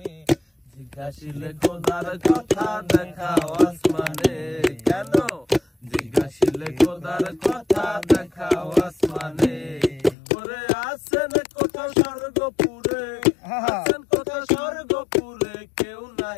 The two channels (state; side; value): drops out; right; at 10.2 s